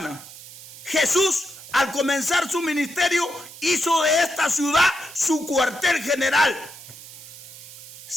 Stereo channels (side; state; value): right; noise; hiss, 16 dB below the sound